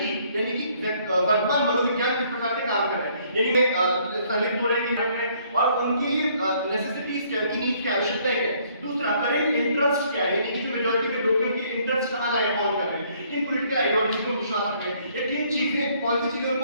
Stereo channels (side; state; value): both; inverted; correlation -0.64